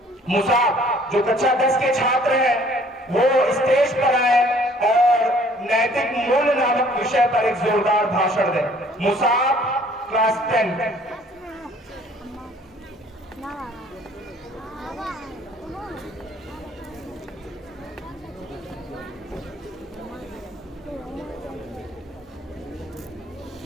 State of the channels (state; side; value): normal; both; correlation 0.57